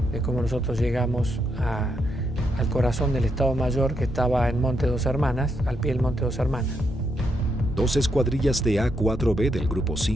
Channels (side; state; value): both; normal; correlation 0.79